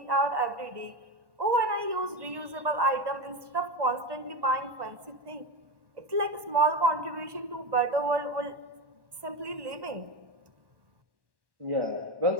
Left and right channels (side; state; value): left; late; 1.1 ms